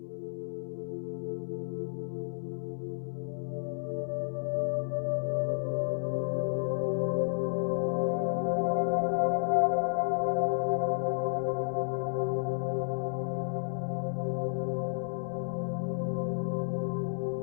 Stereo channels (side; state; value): right; silent; 57 dB below the other